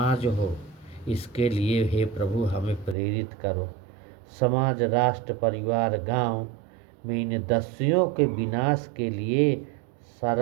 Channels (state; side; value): drops out; left; at 3.0 s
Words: हो। इसके लिए हे प्रभु हमें प्रेरित करो। समाज, राष्ट्र, परिवार, गांव में इन दस्युओं के विनाश के लिए